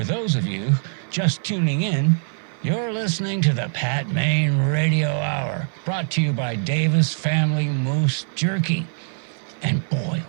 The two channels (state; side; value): silent; left; 57 dB below the other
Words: those of you just tuning in, you're listening to the Pat Maine Radio Hour, brought to you by Davis Family Moose Jerky. And boy,